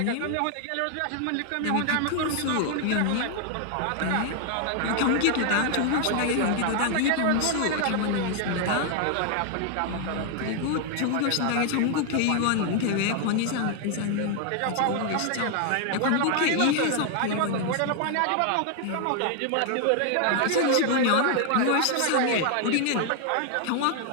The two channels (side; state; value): both; different; correlation 0.00